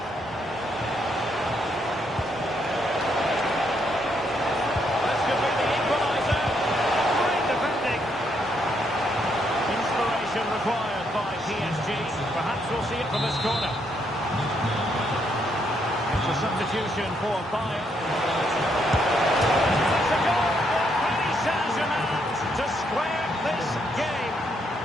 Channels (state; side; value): normal; both; correlation 0.75